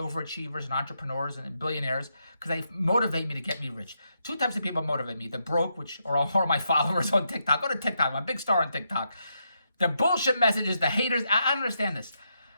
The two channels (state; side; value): inverted; both; correlation -0.81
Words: overachievers and entrepreneurs and billionaires because they motivate me to get me rich. Two types of people motivate me. The broke, which are all my followers on TikTok. Go to TikTok. I'm a big star on TikTok. The bullshit messages, the haters, I understand this.